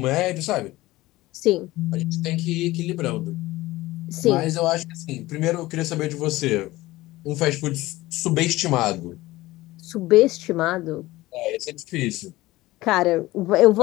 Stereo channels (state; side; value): quieter; right; 18.3 dB